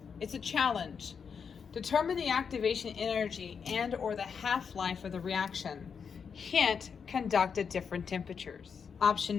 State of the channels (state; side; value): quieter; right; 6.4 dB